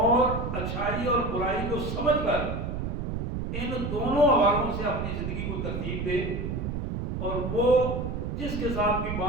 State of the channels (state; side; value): noise; right; rumble, 3 dB below the sound